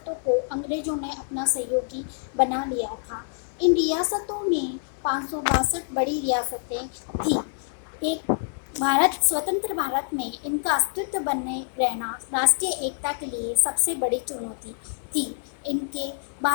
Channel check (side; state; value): right; silent; 61 dB below the other